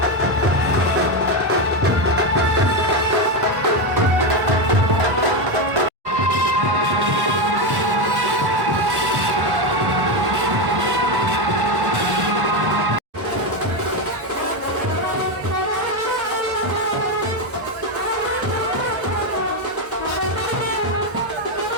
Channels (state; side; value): late; left; 1.1 ms